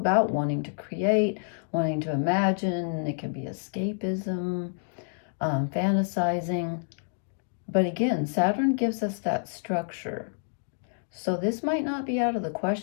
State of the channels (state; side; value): silent; right; digital silence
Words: wanting to create, wanting to imagine. It can be escapism, fantasizing. But again, Saturn gives us that structure. So this might not be out of the